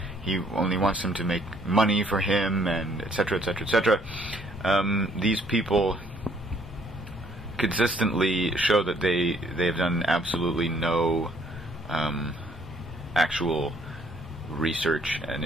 he only wants them to make money for him, and etc., etc., etc. These people consistently show that they've done absolutely no actual research and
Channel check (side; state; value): both; normal; correlation 0.64